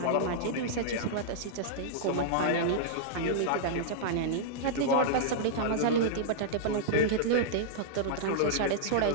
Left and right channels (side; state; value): both; different; correlation -0.02